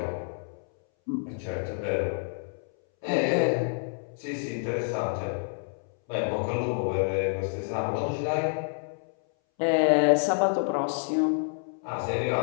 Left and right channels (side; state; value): right; silent; 59 dB below the other